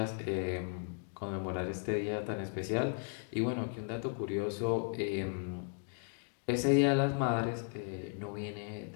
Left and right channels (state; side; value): silent; right; 54 dB below the other